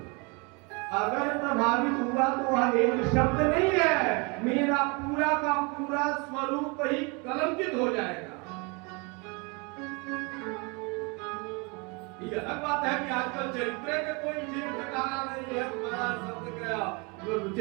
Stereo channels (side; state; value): left; quieter; 30.4 dB